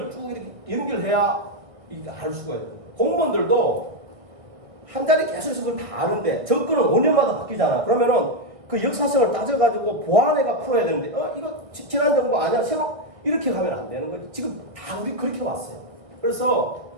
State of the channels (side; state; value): left; late; 1.6 ms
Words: 쭉 이렇게 연결해야 이게 알 수가 있는 거예요. 공무원들도 한 자리 계속 있어서 그걸 다 아는데 정권은 5년마다 바뀌잖아. 그러면은 그 역사성을 따져가지고 보완해가 풀어야 되는데 이거 지난 정부 아니야? 새로 이렇게 가면 안 되는 거지. 지금 다 우리 그렇게 왔어요. 그래서